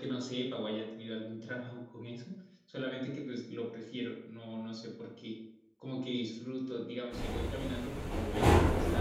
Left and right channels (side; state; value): both; identical; correlation 1.00